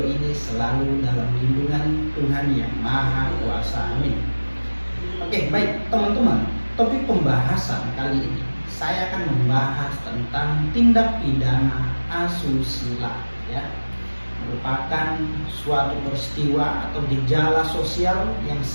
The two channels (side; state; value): both; inverted; correlation -1.00